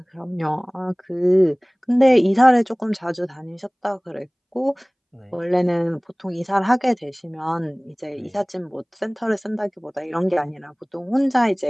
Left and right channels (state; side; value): identical; both; correlation 1.00